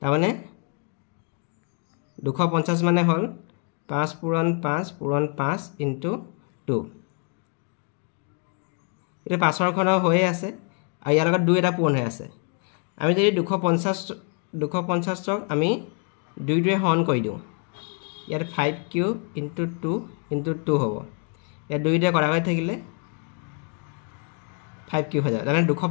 মানে 250 মানে হল 5 পূৰণ 5 পূৰণ 5 ইনটু 2 এটা 5 ৰ ঘন হৈ আছে আৰু ইয়াৰ লগত 2 এটা পূৰণ হৈ আছে আমি যদি 250 ক আমি 2 ৰে হৰণ কৰি দিওঁ ইয়াত 5 কিউব ইনটু 2 ইনটু 2 হ'ব ইয়াত 2 ৰে কৰা হৈ থাকিলে 5 কিউব হৈ যায় মানে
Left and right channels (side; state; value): right; quieter; 38.9 dB